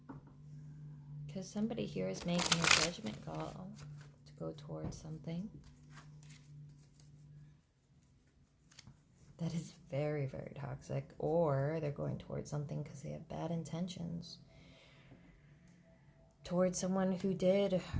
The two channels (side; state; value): both; identical; correlation 1.00